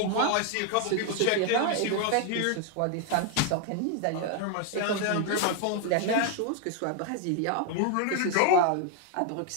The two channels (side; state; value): both; different; correlation 0.00